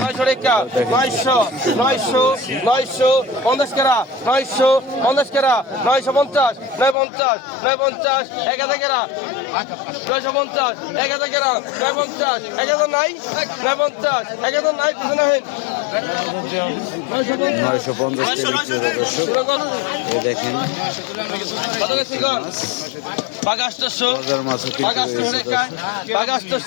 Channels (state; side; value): drops out; right; at 7.0 s